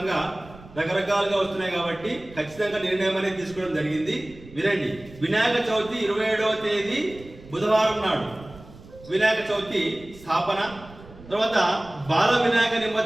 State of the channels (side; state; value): right; noise; rumble, 20 dB below the sound